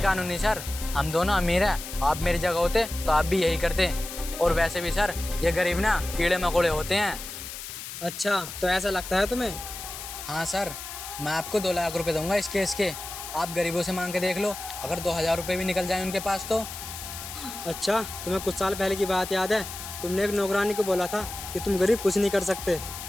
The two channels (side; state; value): left; noise; hiss, 9 dB below the sound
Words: कानूनी सर? हम दोनों अमीर हैं, आप मेरी जगह होते तो आप भी यही करते। और वैसे भी सर, ये गरीब ना कीड़े मकोड़े होते हैं। अच्छा, तो ऐसा लगता है तुम्हें? हाँ सर, मैं आपको 2 लाख रुपए दूंगा इस केस के। आप गरीबों से मांग के देख लो, अगर 2000 रुपये भी निकल जाए उनके पास तो। अच्छा, तुम्हें कुछ साल पहले की बात याद है? तुमने एक नौकरानी को बोला था कि तुम गरीब कुछ नहीं कर सकते।